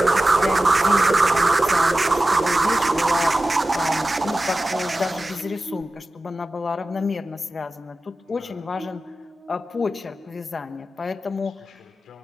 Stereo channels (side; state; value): both; normal; correlation 0.94